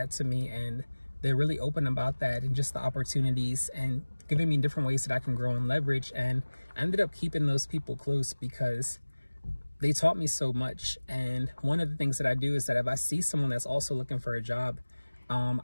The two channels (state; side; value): inverted; both; correlation -1.00